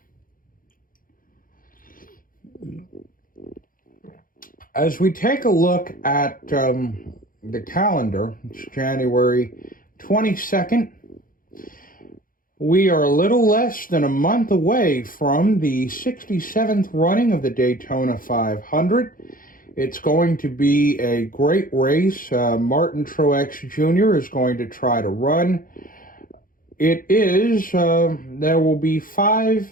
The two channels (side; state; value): right; late; 0.40 ms